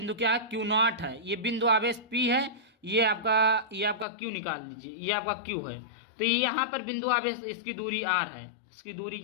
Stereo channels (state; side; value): drops out; right; at 4.0 s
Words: क्या है, Q0 है। ये बिंदु आवेश P है, ये आपका Q निकाल दीजिए, ये आपका Q है। तो यहाँ पर बिंदु आवेश, इसकी दूरी R है, इसकी दूरी